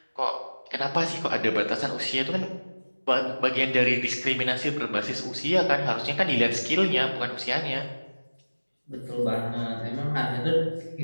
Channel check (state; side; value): inverted; both; correlation -1.00